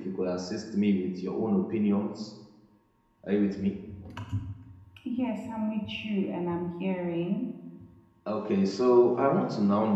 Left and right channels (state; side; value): identical; both; correlation 1.00